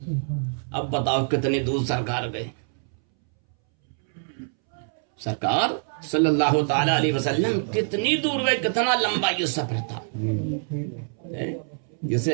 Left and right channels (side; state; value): left; silent; 62 dB below the other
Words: اب بتاؤ کتنے دور سرکار گئے. سرکار صلی اللہ تعالی علیہ وسلم کتنی دور گئے، کتنا لمبا یہ سفر تھا.